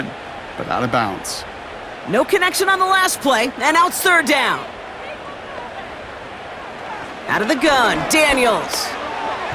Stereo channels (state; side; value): identical; both; correlation 1.00